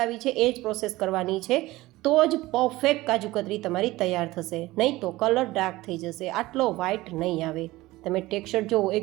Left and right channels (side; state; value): left; quieter; 18.6 dB